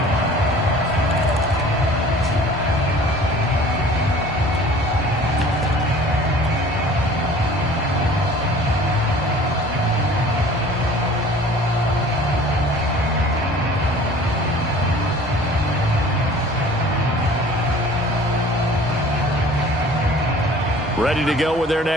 Ready to go with their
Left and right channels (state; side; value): normal; both; correlation 0.47